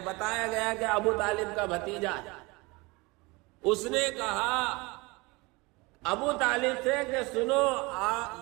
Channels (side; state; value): left; quieter; 24.8 dB